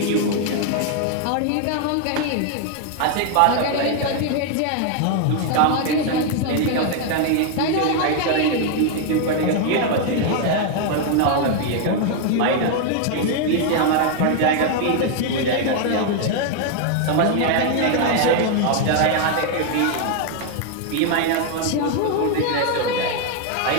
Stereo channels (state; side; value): different; both; correlation 0.00